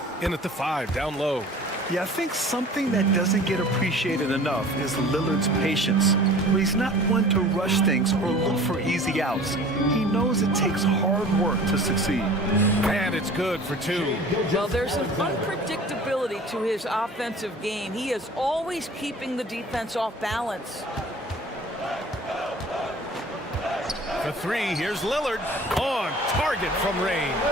in at the 5 down low. Yeah, I think something that doesn't get appreciated enough is Lillard's patience. Where he's not one to rush things or look for easy outs. He knows it takes hard work to succeed. And it's good for 2. Well, there's an unpredictability to his offensive game. He is always keeping the defense off balance. For 3, here's Lillard on target from range.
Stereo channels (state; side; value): normal; both; correlation 0.45